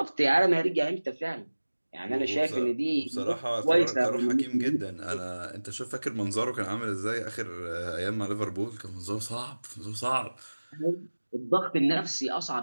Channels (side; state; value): both; inverted; correlation -1.00